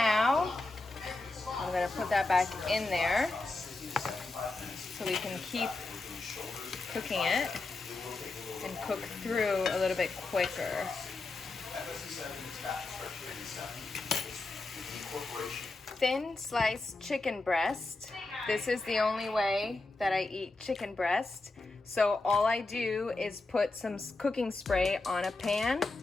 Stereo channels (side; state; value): right; quieter; 3.3 dB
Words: I'm gonna put that back in there so we can keep cooking it and cook through a little bit quicker. Thin sliced chicken breast. This is the only way that I eat chicken breast. So all I do is put some cooking spray on a pan,